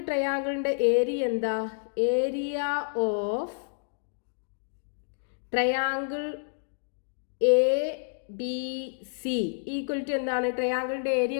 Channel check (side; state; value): right; silent; digital silence